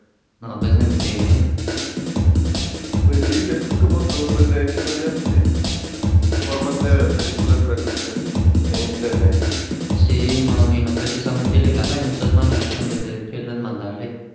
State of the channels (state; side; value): identical; both; correlation 1.00